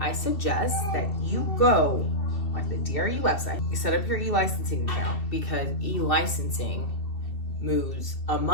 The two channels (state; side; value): late; right; 2.7 ms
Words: suggest that you go on the DRE website, you set up your e-licensing account because e-licensing moves a